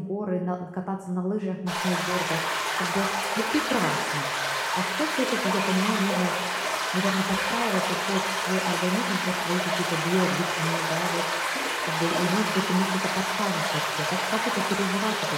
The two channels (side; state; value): both; identical; correlation 1.00